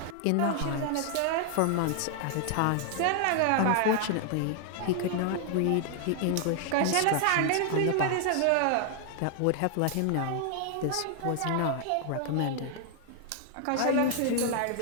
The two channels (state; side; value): different; both; correlation 0.00